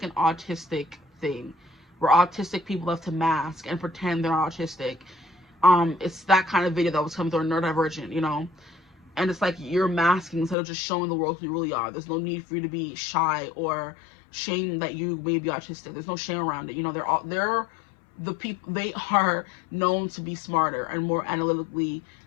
an autistic thing, where autistic people have to mask and pretend they're autistic. It's that kind of video that was coming through Neurodivergent, you know, and it's like you're masking instead of just showing the world who you really are. There's no need for you to be shy or shame that you may be autistic. There's no shame around it. You know, they're the people, they are known to be smarter and more analytically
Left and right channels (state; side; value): drops out; right; at 10.6 s